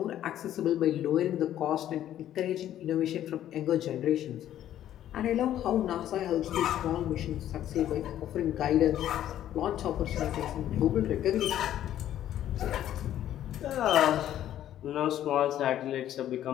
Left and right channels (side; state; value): right; quieter; 11.7 dB